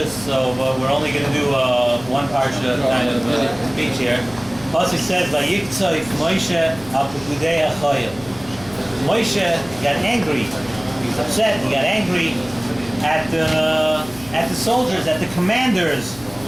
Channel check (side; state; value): left; noise; hum, 20 dB below the sound